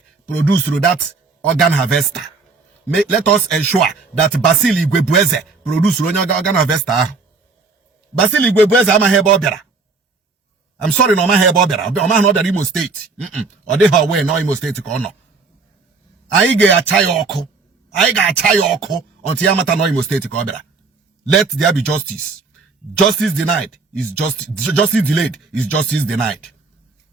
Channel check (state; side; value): quieter; left; 4.2 dB